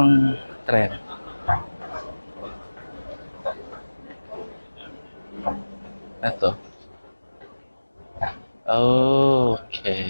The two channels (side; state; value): both; inverted; correlation -1.00